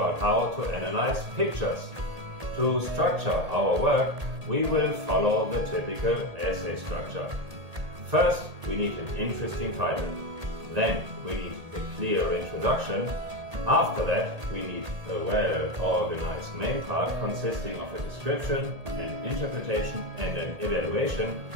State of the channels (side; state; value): left; late; 1.8 ms